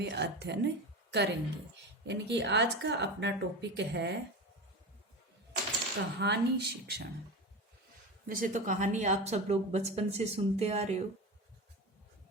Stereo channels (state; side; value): normal; both; correlation 0.25